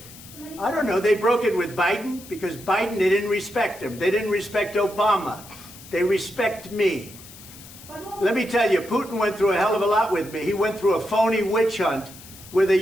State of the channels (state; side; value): noise; left; hiss, 18 dB below the sound